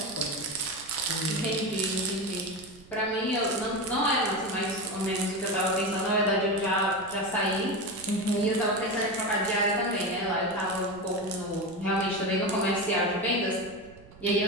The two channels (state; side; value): noise; right; rumble, 23 dB below the sound